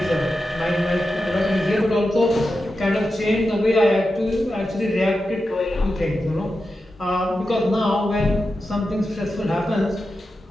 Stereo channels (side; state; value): both; normal; correlation 0.90